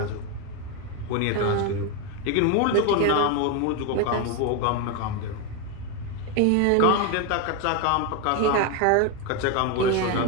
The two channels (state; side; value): different; both; correlation 0.02